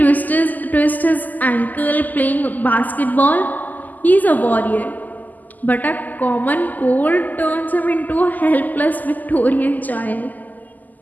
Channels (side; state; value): right; late; 0.082 ms